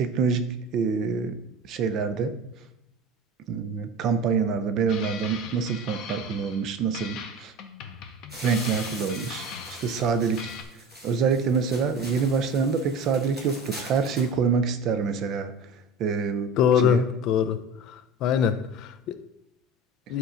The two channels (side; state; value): both; normal; correlation 0.34